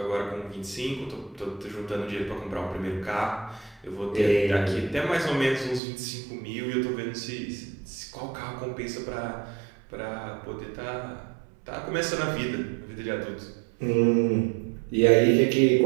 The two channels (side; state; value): left; drops out; at 5.8 s